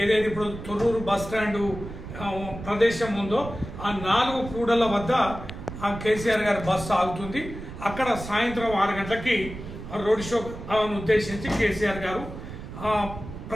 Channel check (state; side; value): noise; right; rumble, 11 dB below the sound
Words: ఏదైతే ఇప్పుడు తొర్రూరు బస్ స్టాండ్ ప్రదేశం ఉందో ఆ 4 కూడళ్ల వద్ద ఆ కేసీఆర్ గారి బస్సు ఆగుతుంది. అక్కడ సాయంత్రం 6 గంటలకి రోడ్ షో ఉద్దేశించి కేసీఆర్ గారు